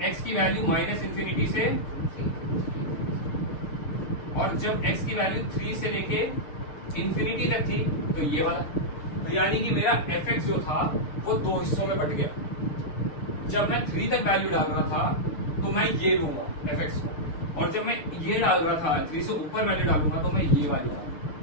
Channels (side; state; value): right; late; 6.6 ms